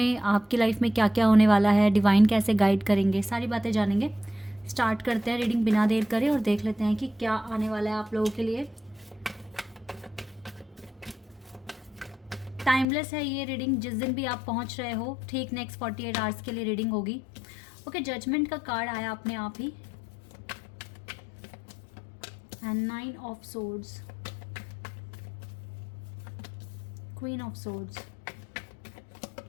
आपकी लाइफ में क्या क्या होने वाला है, डिवाइन कैसे गाइड करेंगे, सारी बातें जानेंगे। स्टार्ट करते हैं रीडिंग बिना देर करे और देख लेते हैं कि क्या आने वाला है आप लोगों के लिए। टाइमलेस है ये रीडिंग, जिस दिन भी आप पहुंच रहे हो ठीक नेक्स्ट 48 आवर्स के लिए रीडिंग होगी। ओके, जजमेंट का कार्ड आया अपने आप ही, and 9 of swords, queen of swords,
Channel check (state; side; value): drops out; right; at 12.9 s